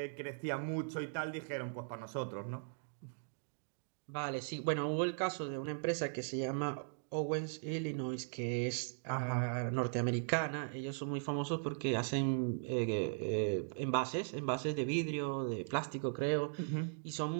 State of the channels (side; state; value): left; silent; digital silence